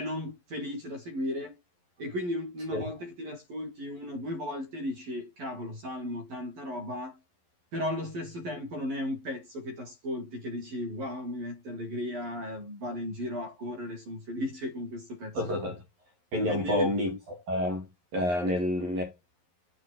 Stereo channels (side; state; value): left; late; 11 ms